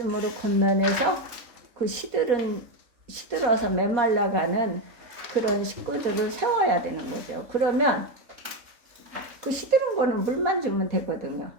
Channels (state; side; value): late; left; 4.2 ms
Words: 권면해서 그 시들어서 메말라가는 그런 식구들을 세워야 되는 거죠. 그러면 그 시드는 거는 물만 주면 되거든요.